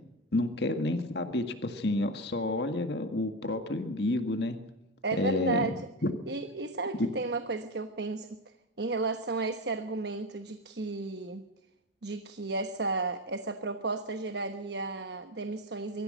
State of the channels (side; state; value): both; normal; correlation 0.18